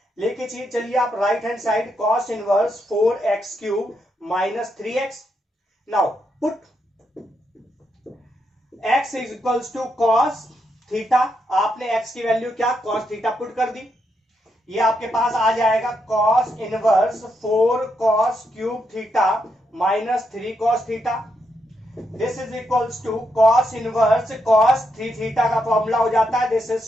लेके चलिए आप right hand side, cos inverse 4x cube minus 3x। Now put x is equals to cos theta, आपने x की वैल्यू क्या, cos थीटा पुट कर दी। ये आपके पास आ जाएगा cos inverse 4 cos cube theta minus 3 cos theta. This is equals to cos inverse cos 3 theta का फॉर्मूला हो जाता है, this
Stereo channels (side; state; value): both; normal; correlation 0.81